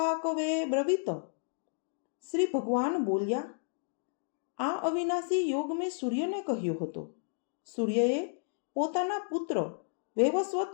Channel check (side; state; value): right; silent; digital silence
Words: બ્રવીત। શ્રી ભગવાન બોલ્યા, આ અવિનાશી યોગ મેં સૂર્યને કહ્યો હતો। સૂર્યએ પોતાના પુત્ર વૈવસ્વત